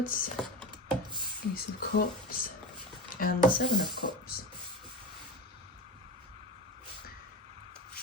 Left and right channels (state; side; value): normal; both; correlation 0.27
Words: Ace of Cups, and the Seven of Cups.